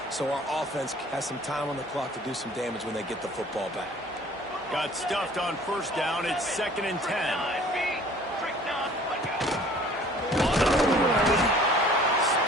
so our offense has some time on the clock to do some damage when they get the football back. Got stuffed on first down. It's 2nd and 10.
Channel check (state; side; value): normal; both; correlation 0.51